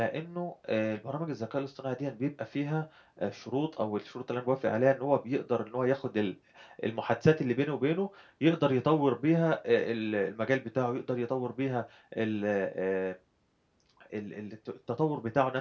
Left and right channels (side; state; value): both; identical; correlation 1.00